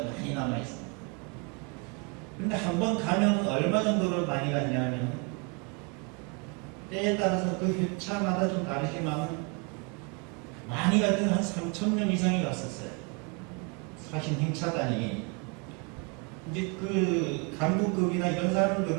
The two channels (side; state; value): left; quieter; 32.2 dB